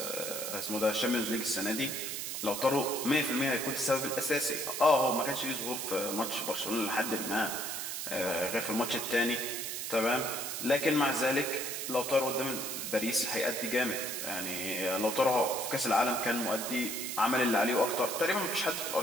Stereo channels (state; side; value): noise; right; hiss, 4 dB below the sound